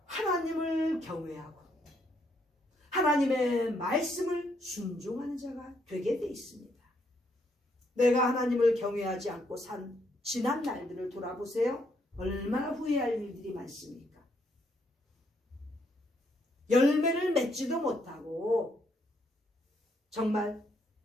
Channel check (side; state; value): both; normal; correlation 0.73